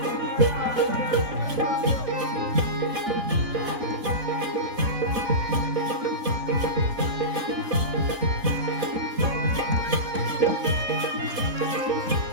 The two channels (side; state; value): left; late; 4.0 ms